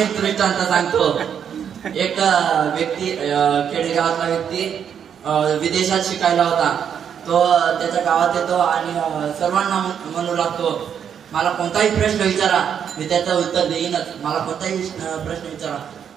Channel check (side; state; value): left; quieter; 8.2 dB